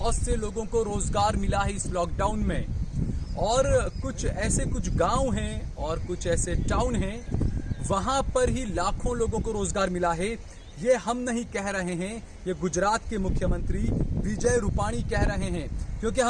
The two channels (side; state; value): both; identical; correlation 1.00